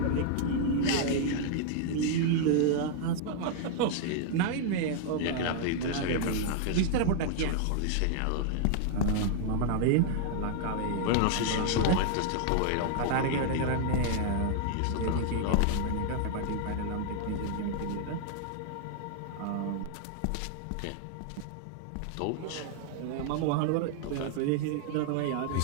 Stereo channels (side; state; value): both; different; correlation -0.01